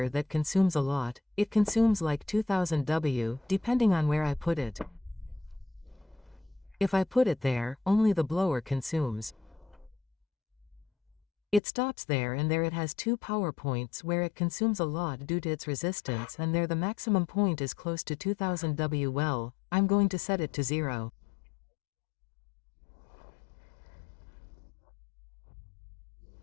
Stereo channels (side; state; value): right; drops out; at 11.6 s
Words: that consumes a lot. It consumes like 2000 W, depending on where I put it. If I put it there, only the blower consumes. It stops there, and there it has 2 power points where it consumes a lot due to its resistance, and there the maximum point is close to 2000 W. Well, I'm going to set it to 0.